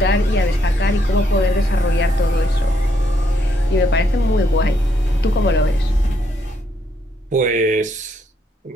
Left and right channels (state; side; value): normal; both; correlation 0.74